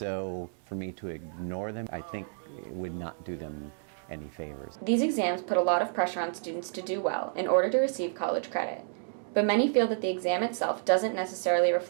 for me to ignore them, I think it would not do them any favors. These exams put a lot of pressure on students to do well in order to receive college credit. But many feel that the exam itself doesn't necessarily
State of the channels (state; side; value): silent; left; digital silence